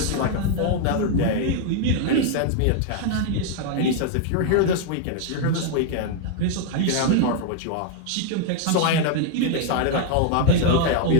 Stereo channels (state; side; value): different; both; correlation 0.00